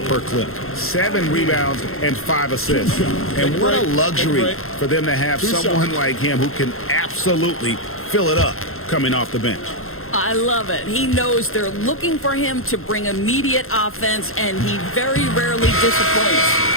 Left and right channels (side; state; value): right; late; 0.61 ms